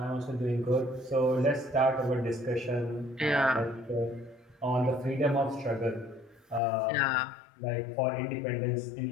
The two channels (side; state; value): right; drops out; at 6.6 s